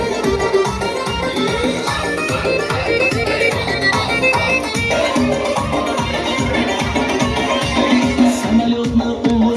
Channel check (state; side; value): identical; both; correlation 1.00